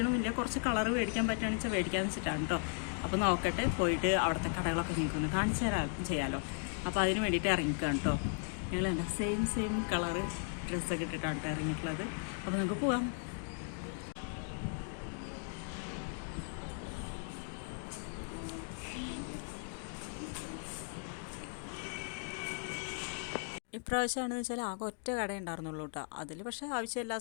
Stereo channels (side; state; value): right; silent; 53 dB below the other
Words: കുറച്ച് കളർ മേടിക്കാൻ പറ്റുകയാണെന്ന് വെച്ചാൽ മേടിക്കാന്ന് വെച്ചിട്ടാണ് കേട്ടോ. അപ്പോൾ നോക്കട്ടെ, പോയിട്ട് അവിടുത്തെ കടകളൊക്കെ നിങ്ങൾക്കൊന്ന് കാണിച്ചു തരാൻ ചെയ്യാമല്ലോ. അപ്പോൾ അതിന് വേണ്ടിയിട്ട് ഇറങ്ങിക്കാം കേട്ടോ. ഞങ്ങൾ എന്താ സെയിം കളറ് ഡ്രസ്സൊക്കെ ഇട്ടിട്ടാണ് കേട്ടോ ഇറങ്ങിയിട്ടുള്ളത്. അപ്പോൾ നമുക്ക് പോവാം. ഇപ്രാവശ്യമാണെന്ന് വെച്ചാൽ ആകെ ഒറ്റ കട ഉണ്ടായിരുന്നുള്ളൂ കേട്ടോ. അതിൽ പക്ഷേ ആവശ്യം എല്ലാ